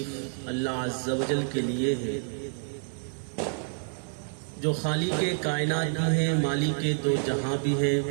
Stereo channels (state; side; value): silent; left; 56 dB below the other